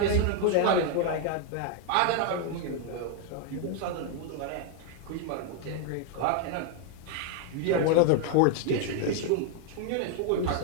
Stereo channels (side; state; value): both; different; correlation 0.01